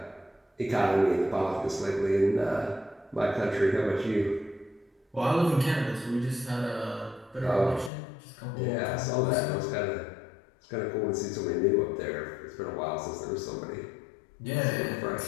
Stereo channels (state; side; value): drops out; right; at 7.9 s